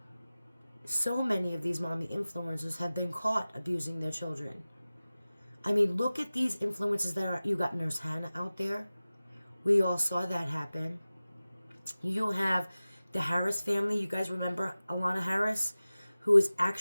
So many of these mommy influencers have been caught abusing their children. I mean, look at these influencers that are, you got Nurse Hannah out there. We all saw that happen. You have the Harris family. You guys remember Alana Harris, who is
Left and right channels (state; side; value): inverted; both; correlation -0.97